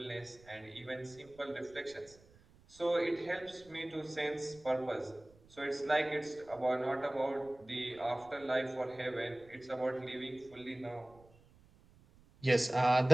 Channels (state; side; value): noise; right; rumble, 26 dB below the sound